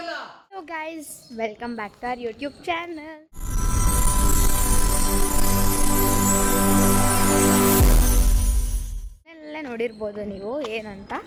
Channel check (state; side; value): identical; both; correlation 1.00